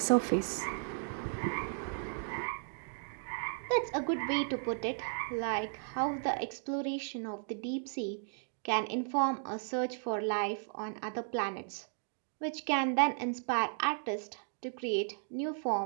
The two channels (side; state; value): left; silent; digital silence